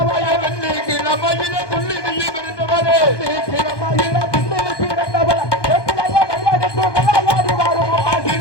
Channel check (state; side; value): late; right; 1.2 ms